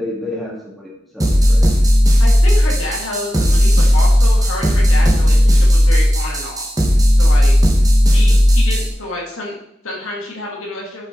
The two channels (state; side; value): normal; both; correlation 0.94